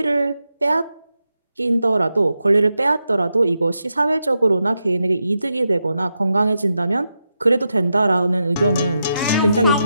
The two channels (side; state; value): both; inverted; correlation -0.87